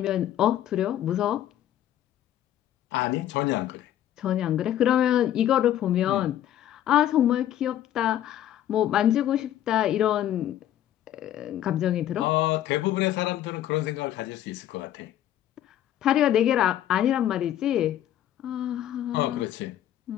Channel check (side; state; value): right; quieter; 11.8 dB